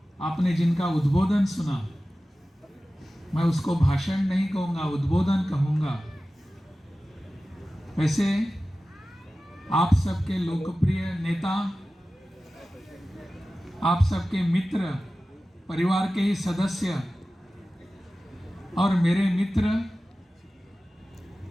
आपने जिनका उद्बोधन सुना, मैं उसको भाषण नहीं कहूँगा, उद्बोधन कहूँगा। वैसे आप सबके लोकप्रिय नेता, आप सबके मित्र, परिवार के ही सदस्य और मेरे मित्र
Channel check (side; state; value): both; normal; correlation 0.95